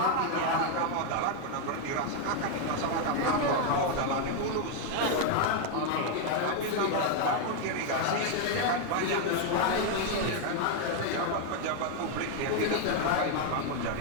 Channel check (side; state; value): both; different; correlation 0.01